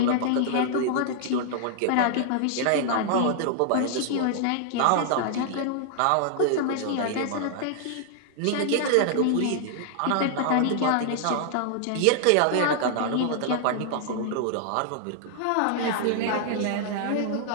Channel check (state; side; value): different; both; correlation -0.01